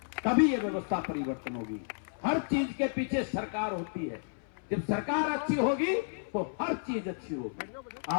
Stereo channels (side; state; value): right; silent; 56 dB below the other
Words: तभी ये व्यवस्था परिवर्तन होगी। हर चीज के पीछे सरकार होती है, जब सरकार अच्छी होगी तो हर चीज अच्छी होगी।